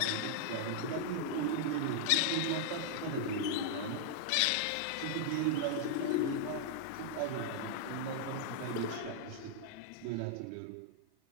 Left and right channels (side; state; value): both; different; correlation -0.01